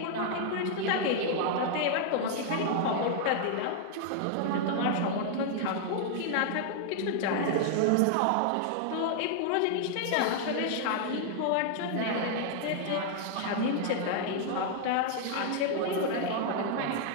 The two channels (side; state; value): both; different; correlation 0.00